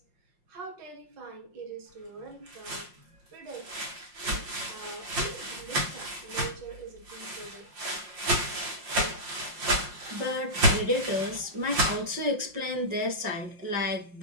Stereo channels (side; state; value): left; late; 5.6 ms